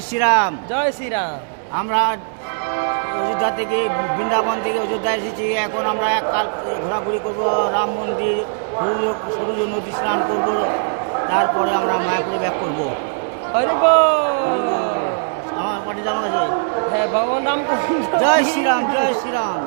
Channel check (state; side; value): silent; left; digital silence